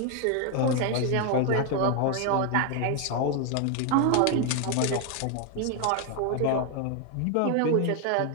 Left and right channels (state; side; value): different; both; correlation 0.01